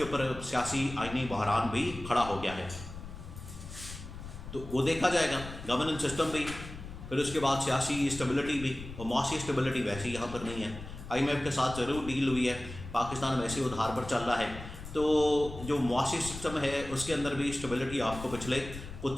اوپر سیاسی آئینی بحران بھی کھڑا ہو گیا ہے. تو وہ دیکھا جائے گا، گورننس سسٹم بھی، پھر اس کے بعد سیاسی اسٹیبلٹی بھی، اور معاشی اسٹیبلٹی ویسے یہاں پر نہیں ہے. IMF کے ساتھ ضرور ڈیل ہوئی ہے، پاکستان ویسے ادھار پر چل رہا ہے. تو جو معاشی سسٹم ہے اس کے اندر بھی اسٹیبلٹی آپ کو پچھلے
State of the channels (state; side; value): noise; left; rumble, 12 dB below the sound